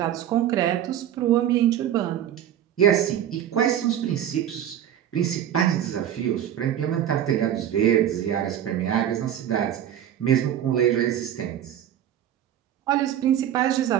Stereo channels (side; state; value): left; quieter; 10.6 dB